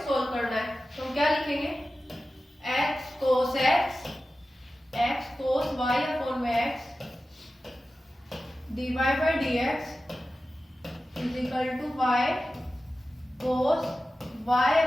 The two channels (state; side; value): normal; both; correlation 0.94